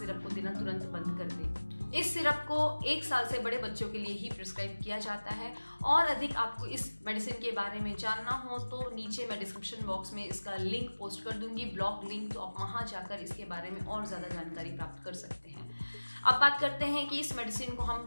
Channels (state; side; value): inverted; both; correlation -1.00